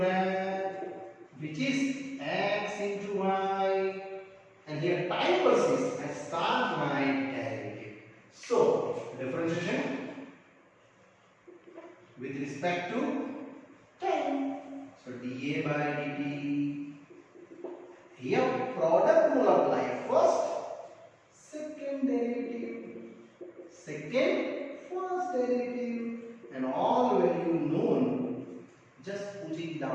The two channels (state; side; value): identical; both; correlation 1.00